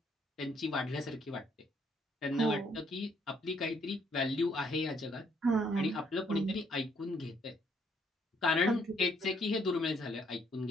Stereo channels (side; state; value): both; normal; correlation 0.68